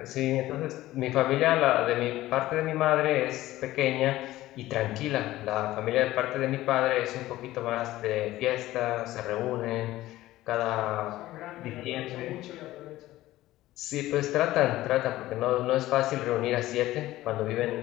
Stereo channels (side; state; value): right; quieter; 16.0 dB